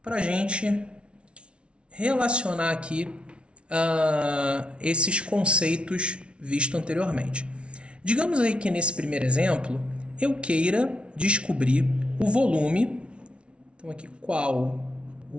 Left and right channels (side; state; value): left; late; 0.059 ms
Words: para a gente relacionar aqui esses conceitos vistos anteriormente. Digamos aí que nesse primeiro exemplo eu queira descobrir o volume. Então aqui, qual